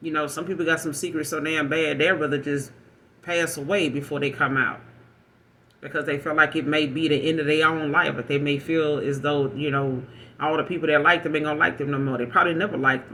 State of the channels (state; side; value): identical; both; correlation 1.00